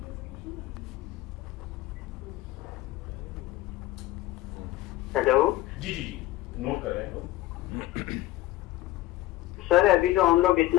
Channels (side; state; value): right; quieter; 16.7 dB